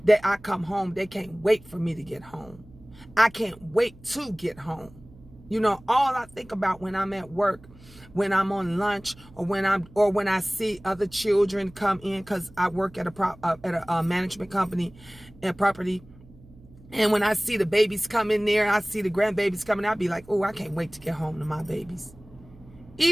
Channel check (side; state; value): right; noise; hum, 23 dB below the sound